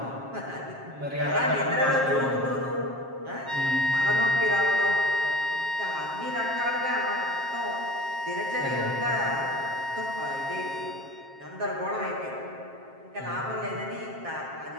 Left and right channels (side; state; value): left; late; 7.4 ms